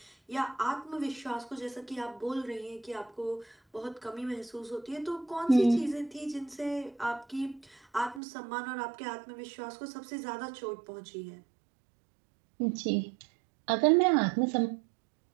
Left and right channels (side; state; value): left; drops out; at 8.2 s